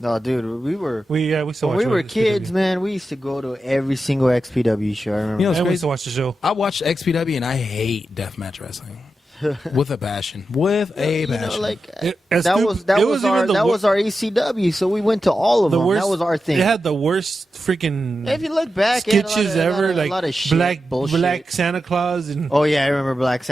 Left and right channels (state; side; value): normal; both; correlation 0.90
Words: dude, we were We still when watch we were it. kids, man. We used to go to every single XPW show. I remember. You know, it's I used crazy. to watch the show. I watched XPW and I hate deathmatch wrestling with a passion. With a You know, passion. like As that stupid- was that it was even our the that wor- was our ECW. So we went to all of the them. worst. That was our thing. It had the worst freaking If you look back, it had sketches a lot of, ever, a like lot of shit, black bullshit. Santa Claus and Oh yeah, I remember Black